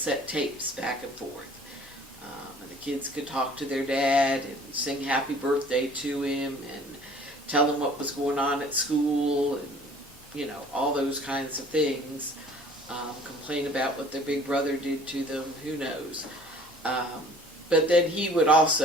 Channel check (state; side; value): normal; both; correlation 0.51